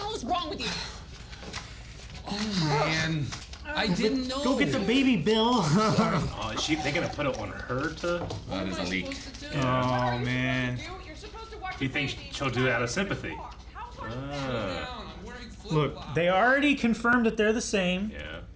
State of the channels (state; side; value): identical; both; correlation 1.00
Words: hell is wrong with you? Oh man, I didn't know. Go get the baby, Bill. Oh, is they gonna put it on her to? That is a leak. Oh, man. You're supposed to watch Do you think she'll do it out of sympathy? Look, they already confirmed that they're the same, Yeah.